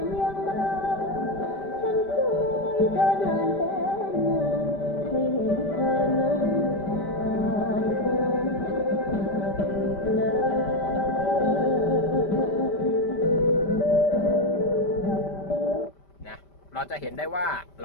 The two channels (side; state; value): right; late; 5.1 ms